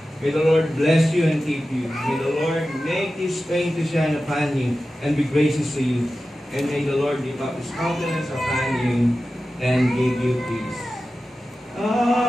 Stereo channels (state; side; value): normal; both; correlation 0.94